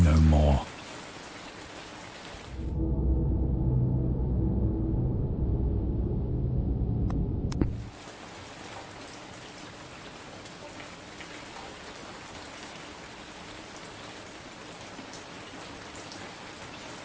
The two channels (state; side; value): identical; both; correlation 1.00